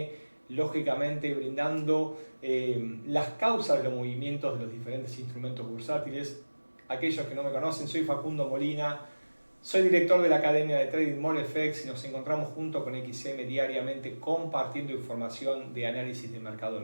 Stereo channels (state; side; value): inverted; both; correlation -1.00